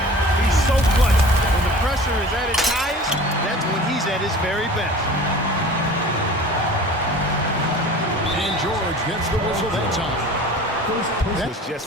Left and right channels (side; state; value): both; normal; correlation 0.41